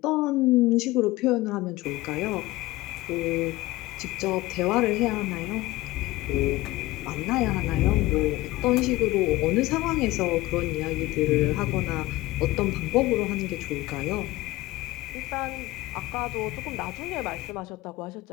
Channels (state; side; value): quieter; right; 18.6 dB